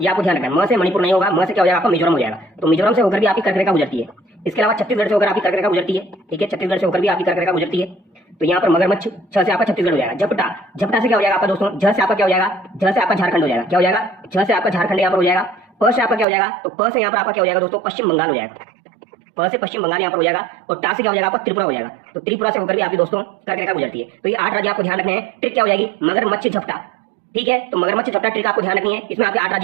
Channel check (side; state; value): left; drops out; at 16.2 s